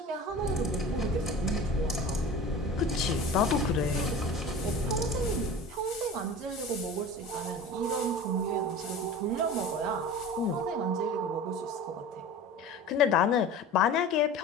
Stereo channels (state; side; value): normal; both; correlation 0.36